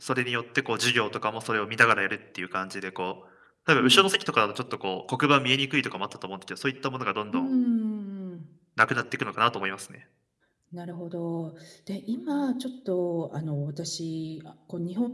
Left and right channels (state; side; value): identical; both; correlation 1.00